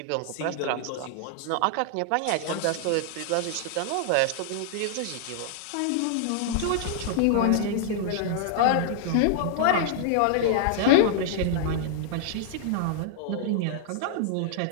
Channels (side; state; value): both; different; correlation -0.01